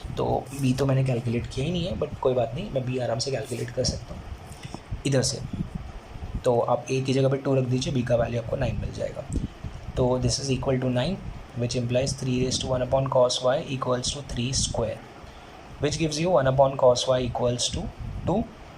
तो बी तो मैंने कैलकुलेट किया ही नहीं है, बट कोई बात नहीं, मैं बी आराम से कैलकुलेट कर सकता हूँ इधर से। तो आप ए की जगह पे 2 रख दीजिए, बी का वैल्यू आपको 9 मिल जाएगा। तो this is equal to 9 which implies 3⁻1 cos y equals to 3 square, which gives you 1 cos y equals to 2,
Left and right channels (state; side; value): identical; both; correlation 1.00